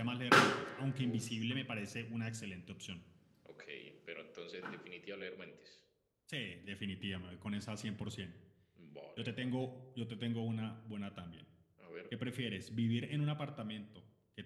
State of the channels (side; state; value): both; identical; correlation 1.00